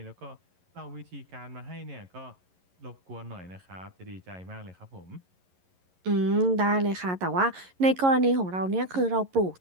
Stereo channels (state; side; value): late; left; 11 ms